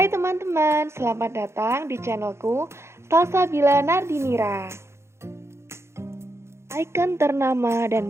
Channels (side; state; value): left; late; 0.13 ms